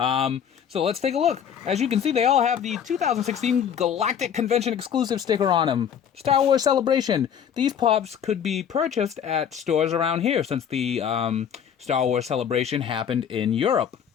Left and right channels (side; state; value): right; quieter; 8.4 dB